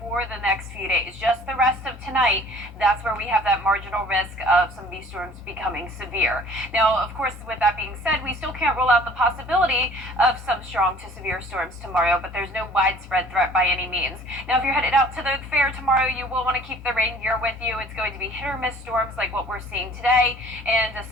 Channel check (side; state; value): both; normal; correlation 0.51